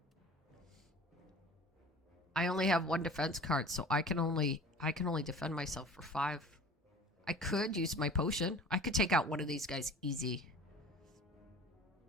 I only have 1 defense card, so I can only defend myself for 5. I could use my potion. I could take out one of these guys easy.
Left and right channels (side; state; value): both; normal; correlation 0.43